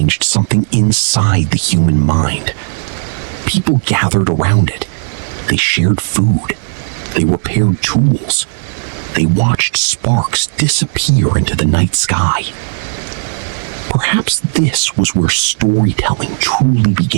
something inside the human mind. People gathered around it. They shared food. They repaired tools. They watched sparks disappear into the night sky. Perhaps this was where storytelling truly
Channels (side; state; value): left; silent; digital silence